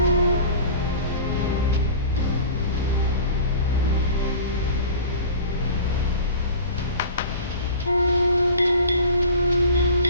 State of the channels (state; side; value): inverted; both; correlation -0.39